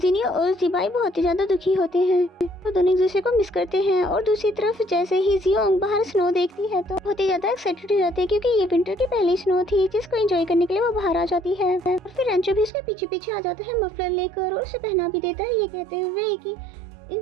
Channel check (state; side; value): drops out; left; at 12.7 s